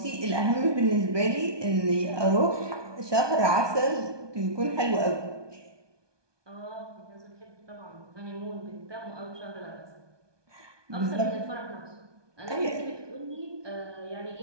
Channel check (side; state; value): left; late; 1.2 ms